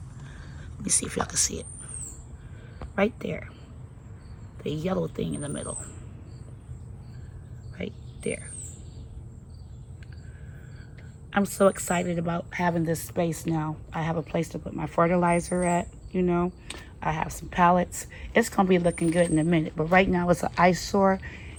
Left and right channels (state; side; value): identical; both; correlation 1.00